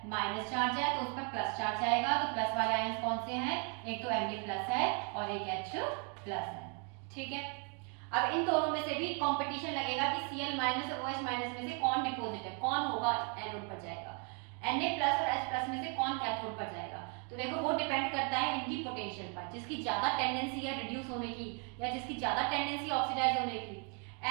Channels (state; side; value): quieter; left; 38.3 dB